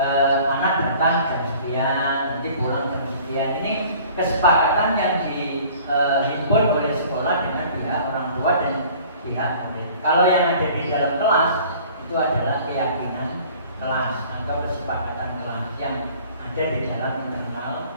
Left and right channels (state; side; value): inverted; both; correlation -0.50